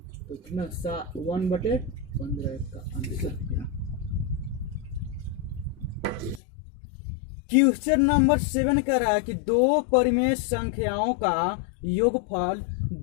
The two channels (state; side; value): drops out; right; at 6.4 s